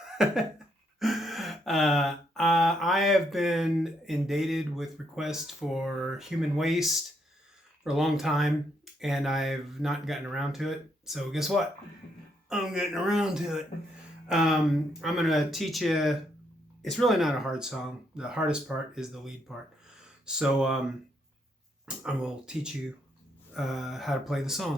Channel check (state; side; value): normal; both; correlation 0.75